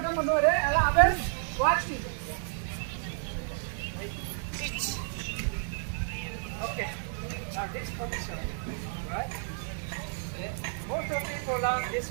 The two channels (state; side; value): silent; left; 57 dB below the other